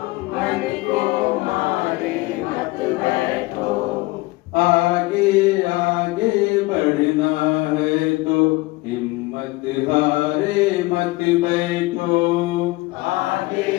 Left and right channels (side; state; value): right; quieter; 21.5 dB